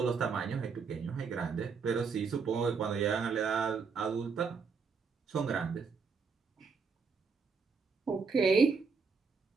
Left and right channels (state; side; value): quieter; left; 5.3 dB